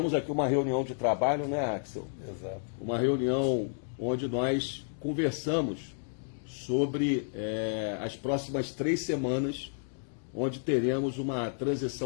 aqui uma reunião de trabalho, né, Axel? Exato. Uma reunião onde nós conversamos sobre as próximas 3 semanas, onde teremos uma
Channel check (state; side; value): silent; right; digital silence